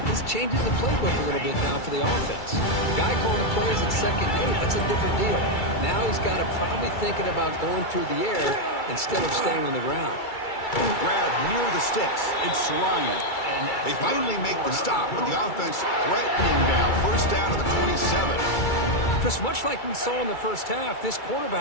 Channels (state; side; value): late; right; 2.3 ms